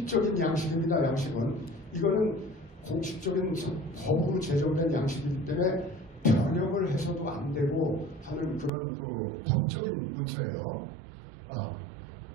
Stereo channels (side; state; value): left; drops out; at 8.7 s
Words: 양식입니다. 양식은. 이거는 공식적인 법으로 제정된 양식이기 때문에 변형을 해서도 안 되고 하는 그런 그 법적인 문서예요.